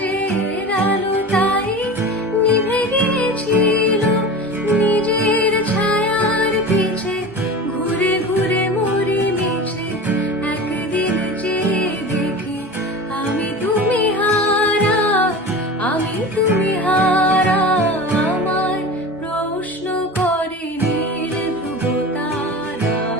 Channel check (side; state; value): both; normal; correlation 0.32